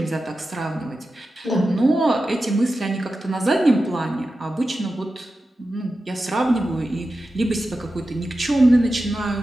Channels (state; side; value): normal; both; correlation 0.92